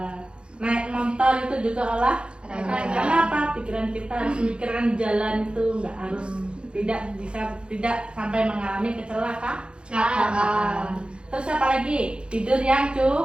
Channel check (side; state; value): left; late; 0.055 ms